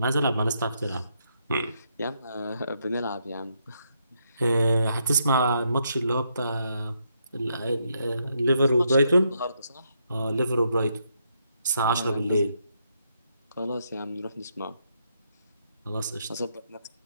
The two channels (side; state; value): both; inverted; correlation -0.78